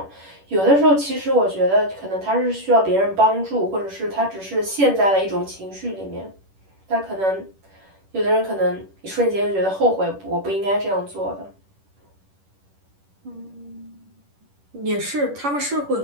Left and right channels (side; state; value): left; late; 10 ms